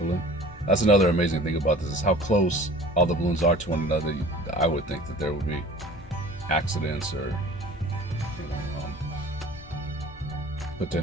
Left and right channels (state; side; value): normal; both; correlation 0.45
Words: That's another amazing thing about this, is how close all the balloons are to one another. I would think that there would be accidents or